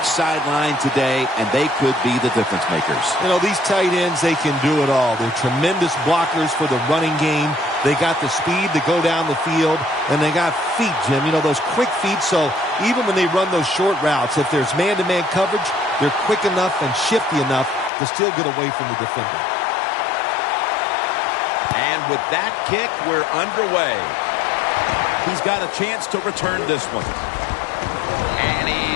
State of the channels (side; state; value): right; drops out; at 17.9 s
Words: sideline today, and they could be the difference makers. You know, these tight ends, they can do it all. They're tremendous blockers for the running game. They got the speed to go down the field, and they got feet, Jim. You know, those quick feet, so even when they run those short routes, if there's man-to-man coverage, they're quick enough and shifty enough to still get away from the defender. And with that kick, we're underway. He's got a chance to return this one. And